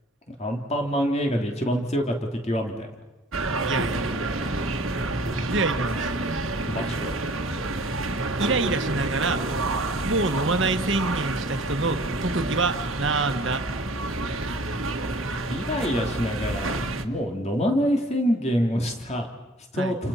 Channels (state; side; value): normal; both; correlation 0.51